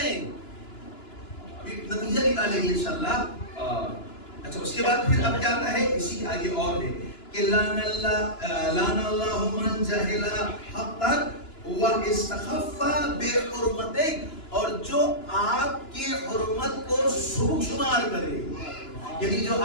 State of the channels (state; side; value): late; right; 2.9 ms